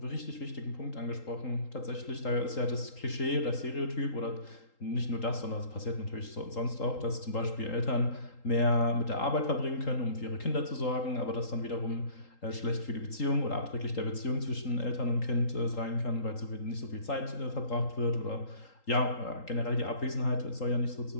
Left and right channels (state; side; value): late; right; 3.8 ms